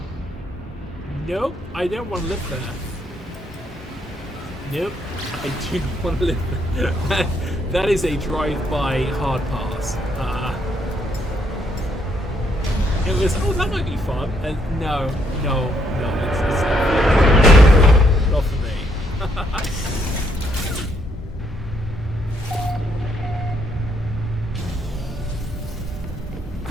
Nope, I don't want to live there. Nope, I do not want to live there. That is a drive-by hard pass. It was, oh, that might be fun. And no, it's not for me.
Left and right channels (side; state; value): both; normal; correlation 0.72